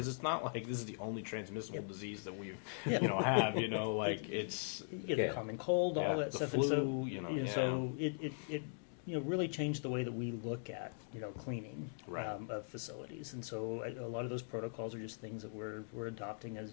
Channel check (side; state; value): right; silent; digital silence